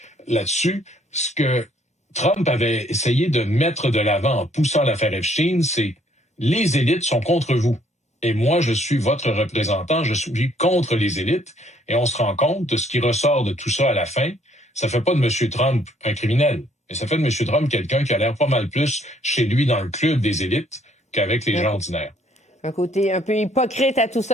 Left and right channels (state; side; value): normal; both; correlation 0.64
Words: là-dessus, ce que Trump avait essayé de mettre de l'avant en poussant l'affaire Epstein, c'est les élites sont contre vous. Et moi, je suis votre représentant, je suis contre les élites. Et on se rend compte de ce qui ressort de tout ça à la fin. Ça fait pas de M. Trump un criminel, mais ça fait de M. Trump quelqu'un qui a l'air pas mal plus chez lui dans le club des élites qu'avec les gens ordinaires. Un côté un peu hypocrite à tout